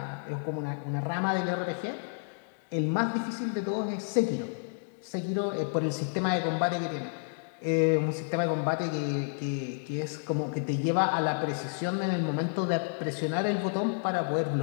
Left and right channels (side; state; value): right; silent; digital silence